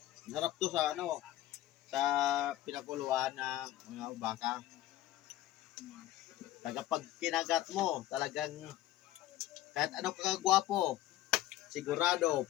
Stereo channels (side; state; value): right; quieter; 14.3 dB